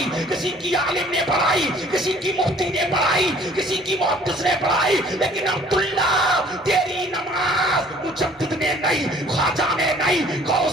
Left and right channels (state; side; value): normal; both; correlation 0.54